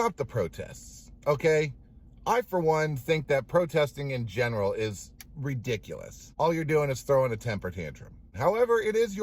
the protests, okay? I, for one, think that protesting in general is ridiculous. All you're doing is throwing a temper tantrum. However, it is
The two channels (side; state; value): both; identical; correlation 1.00